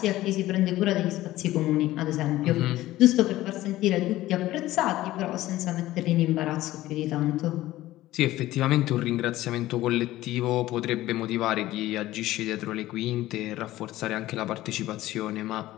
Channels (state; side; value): quieter; right; 15.9 dB